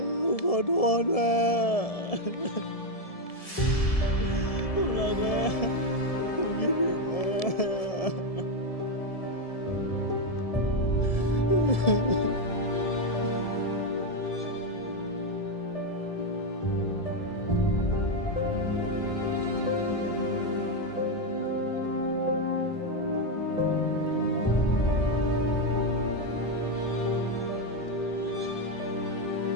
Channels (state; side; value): late; right; 1.7 ms